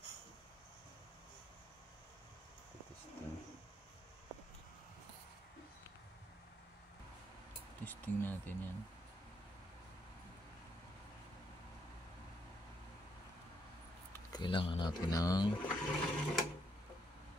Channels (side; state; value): both; normal; correlation 0.75